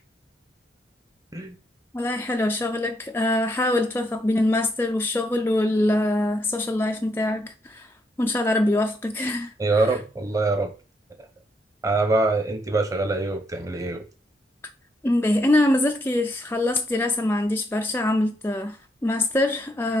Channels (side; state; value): both; normal; correlation 0.76